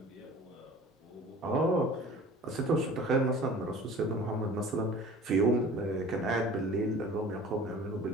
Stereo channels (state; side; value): normal; both; correlation 0.43